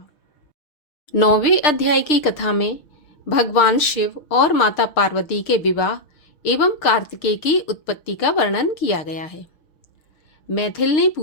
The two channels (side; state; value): right; late; 6.6 ms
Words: 9वें अध्याय की कथा में भगवान शिव और माता पार्वती के विवाह एवं कार्तिकेय की उत्पत्ति का वर्णन किया गया है। मैथिल ने